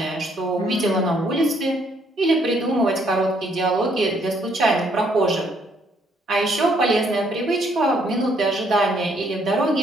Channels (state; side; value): normal; both; correlation 0.68